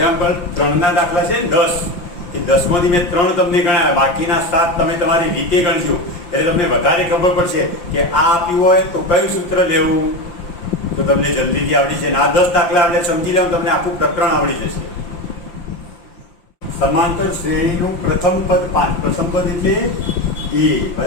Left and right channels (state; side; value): late; right; 5.8 ms